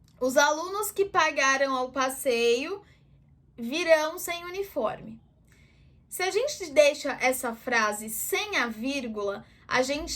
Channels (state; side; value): identical; both; correlation 1.00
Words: Os alunos que pagaram o passeio virão sem uniforme. Se a gente deixa essa frase sem a vírgula, a gente